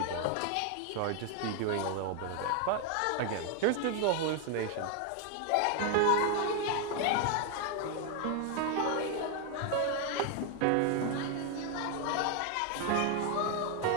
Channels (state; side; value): different; both; correlation 0.01